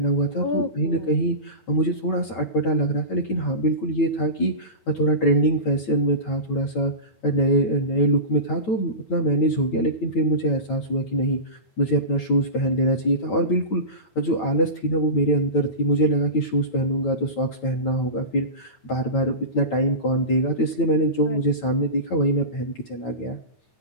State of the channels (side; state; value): right; late; 9.4 ms